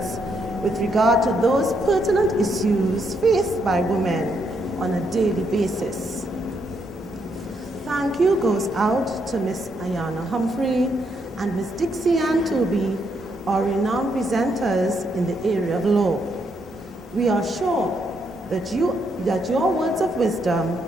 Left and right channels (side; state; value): both; normal; correlation 0.77